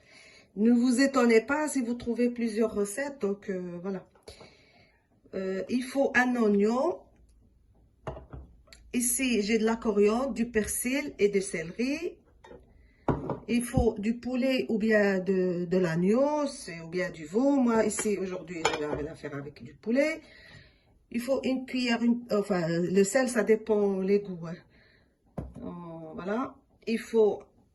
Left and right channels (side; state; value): both; identical; correlation 1.00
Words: Ne vous étonnez pas si vous trouvez plusieurs recettes. Donc, voilà. Il faut un oignon. Ici, j'ai de la coriandre, du persil et du céleri. Il faut du poulet ou bien de l'agneau, ou bien du veau. Moi, ici, aujourd'hui, je vais la faire avec du poulet. Il faut une cuillère, enfin, le sel, ça dépend les goûts. Hein. Voilà. Il faut